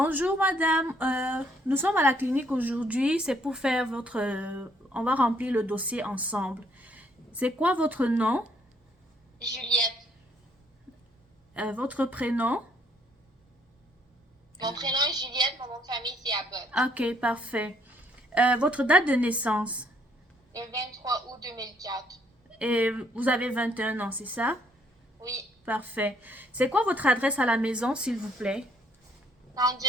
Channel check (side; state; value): both; normal; correlation 0.67